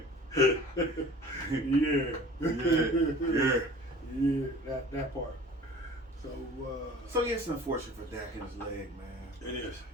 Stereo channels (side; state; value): both; normal; correlation 0.44